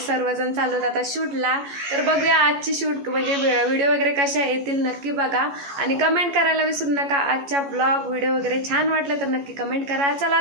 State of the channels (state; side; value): late; left; 14 ms